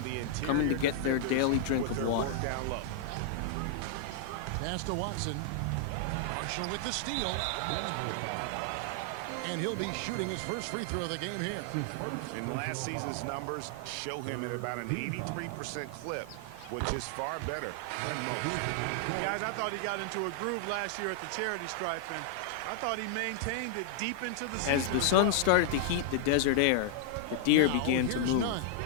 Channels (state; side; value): different; both; correlation -0.01